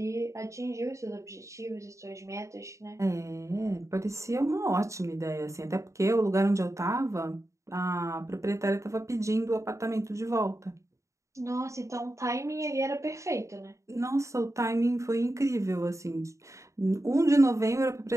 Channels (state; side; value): late; left; 0.15 ms